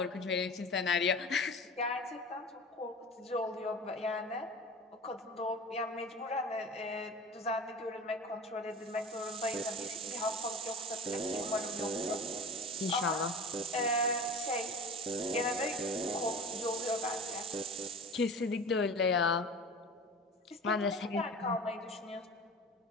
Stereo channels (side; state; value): both; normal; correlation 0.36